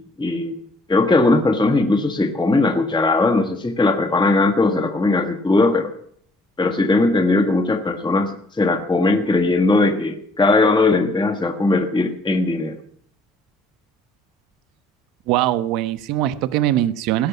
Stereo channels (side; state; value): both; normal; correlation 0.61